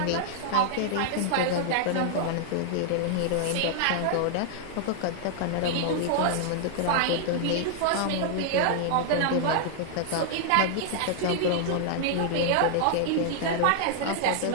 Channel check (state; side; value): different; both; correlation -0.01